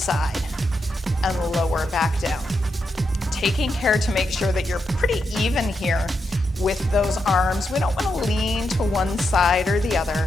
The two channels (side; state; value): both; normal; correlation 0.84